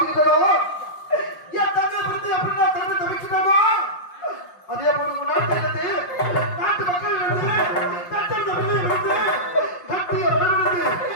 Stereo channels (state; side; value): late; right; 5.6 ms